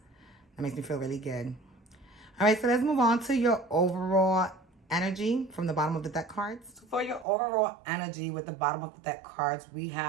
That makes me feel really good. All right, so let's move on to your overall energy from the bottom of the deck cards. So for your overall energy with the bottom of the deck cards, we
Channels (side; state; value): left; drops out; at 7.2 s